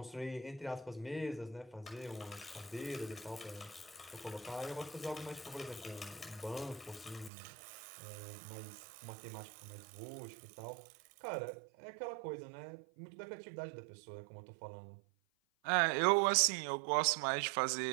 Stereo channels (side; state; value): left; drops out; at 7.3 s